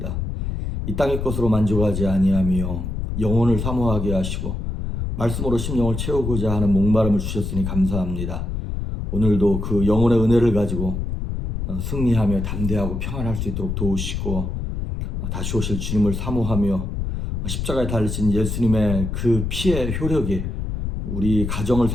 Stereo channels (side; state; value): left; noise; rumble, 3 dB below the sound